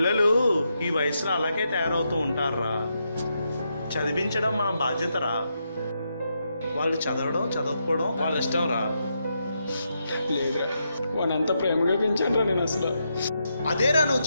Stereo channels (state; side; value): inverted; both; correlation -0.82